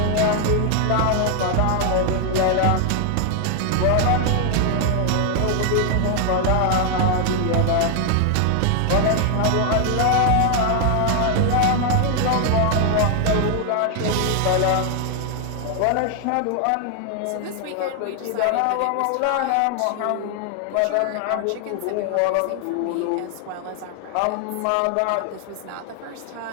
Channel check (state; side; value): different; both; correlation 0.00